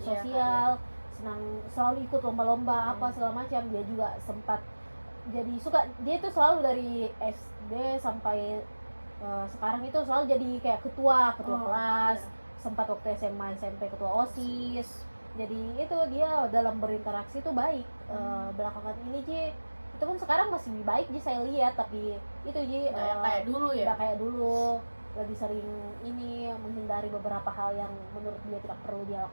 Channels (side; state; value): both; inverted; correlation -1.00